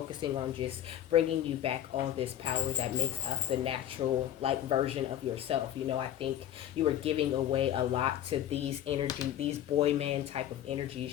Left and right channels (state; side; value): quieter; right; 11.4 dB